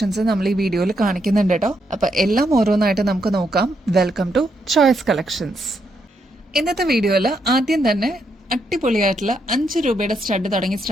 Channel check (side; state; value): both; normal; correlation 0.78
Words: നമ്മൾ ഈ വീഡിയോയിൽ കാണിക്കുന്നുണ്ട് കേട്ടോ. അപ്പൊ എല്ലാം ഓരോന്നായിട്ട് നമുക്ക് നോക്കാം. Welcome to choice collections. ഇന്നത്തെ വീഡിയോയിൽ ആദ്യം തന്നെ അടിപൊളിയായിട്ടുള്ള 5 രൂപയുടെ സ്റ്റഡ് തുടങ്ങി